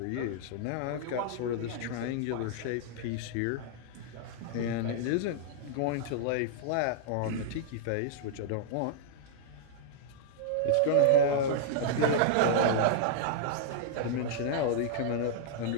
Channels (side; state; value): both; different; correlation -0.01